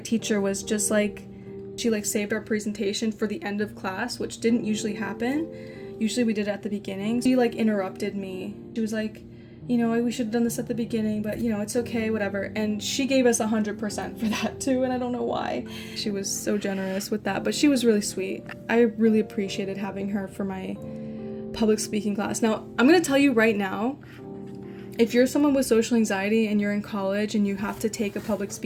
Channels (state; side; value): identical; both; correlation 1.00